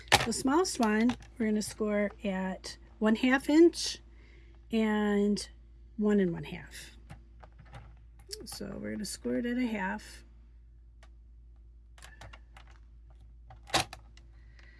The smallest one we're going to score at 1/2 inch and 1 1/2. So we're going to score it at 1/2.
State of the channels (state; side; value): identical; both; correlation 1.00